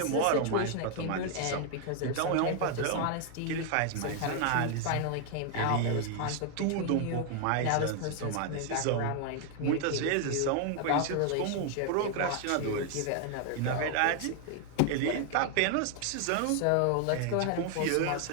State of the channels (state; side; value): different; both; correlation 0.00